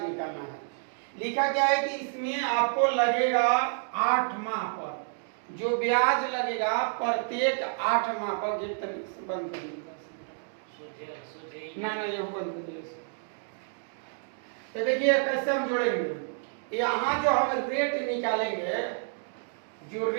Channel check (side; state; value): left; silent; digital silence